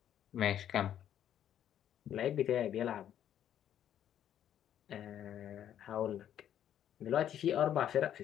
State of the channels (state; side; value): quieter; right; 10.4 dB